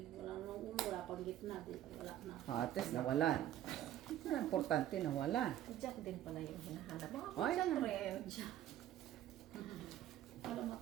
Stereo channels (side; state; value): left; quieter; 12.3 dB